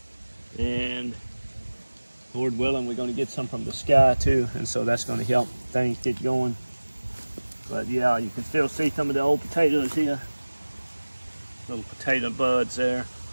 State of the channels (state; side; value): inverted; both; correlation -1.00